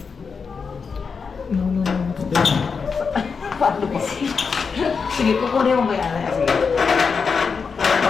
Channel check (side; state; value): right; quieter; 5.5 dB